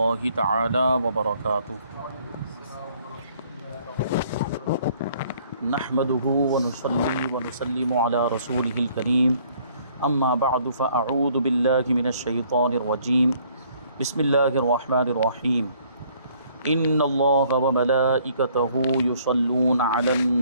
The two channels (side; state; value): both; inverted; correlation -0.61